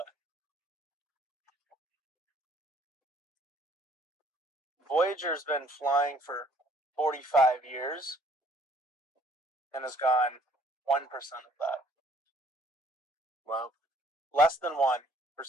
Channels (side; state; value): both; normal; correlation 0.61